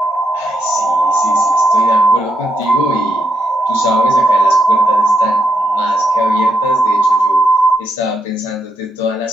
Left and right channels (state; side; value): normal; both; correlation 0.79